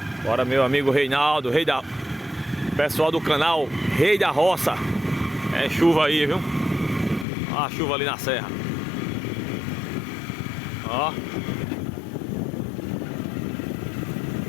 Bora, meu amigo Reinaldo, pessoal do canal Rei da Roça. É chuva aí, viu? Ó a chuva ali na serra. Ó.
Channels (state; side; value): drops out; right; at 7.2 s